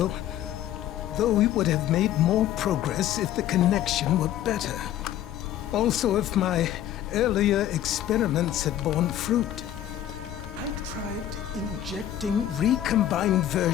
though we would have made more progress if the connection were better. Also, if my earlier experiments had borne fruit. I tried injecting recombined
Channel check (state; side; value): quieter; right; 11.8 dB